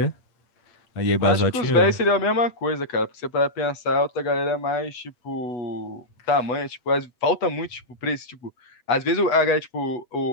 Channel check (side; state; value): right; late; 8.2 ms